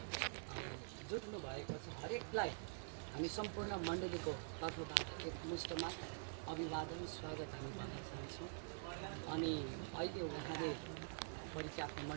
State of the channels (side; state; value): left; silent; digital silence